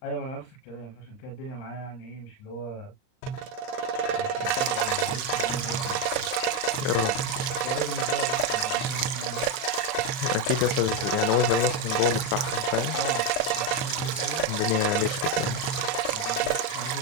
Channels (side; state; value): right; late; 39 ms